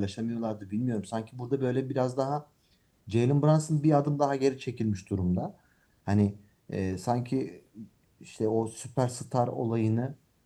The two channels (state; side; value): identical; both; correlation 1.00